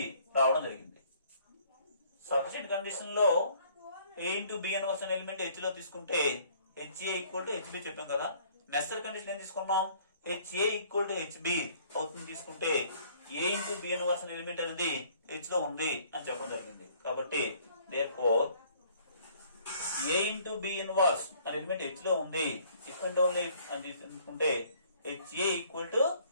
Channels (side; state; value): both; inverted; correlation -0.59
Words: రావడం జరిగింది. సఫిషియెంట్ కండిషన్ లో ఏ ఇంటూ బి ఇన్వర్స్ అనే ఎలిమెంట్ హెచ్ లో తీసుకుంటే హెచ్ఏ ఈక్వల్ టు హెచ్బి చెప్పాం కదా. నెసరీ కండిషన్ ఏం తీసుకున్నాం, హెచ్ఏ ఈక్వల్ టు హెచ్బి అవుతుంది తీసుకుంటే ఏ ఇంటూ బి ఇన్వర్స్ అనే ఎలిమెంట్ అనేది హెచ్ లో ఉంది అని చెప్పడం జరిగింది. కాబట్టి therefore ఏ ఇంటూ బి ఇన్వర్స్ అనే ఎలిమెంట్ హెచ్ లో ఉంది, ఇఫ్ అండ్ ఓన్లీ అని తీసుకుంటే హెచ్ఏ ఈక్వల్ టు